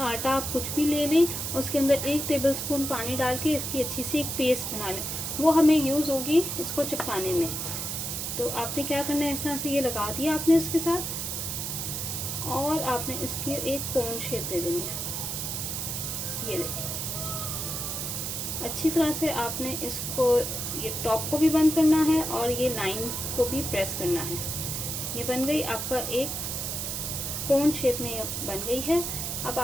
आप कुछ भी ले लें, उसके अंदर 1 टेबलस्पून पानी डाल के इसकी अच्छी सी एक पेस्ट बना लें। वो हमें यूज़ होगी इसको चिपकाने में। तो आपने क्या करना है, इस तरह से ये लगा दिया आपने इसके साथ, और आपने इसकी एक कोन शेप दे देनी है। ये देखिए, अच्छी तरह से आपने इसको ये टॉप को भी बंद करना है और ये लाइंस को भी प्रेस करना है। ये बन गई आपका एक कोन शेप में, ये बन गई है। अब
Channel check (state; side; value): noise; right; hiss, 3 dB below the sound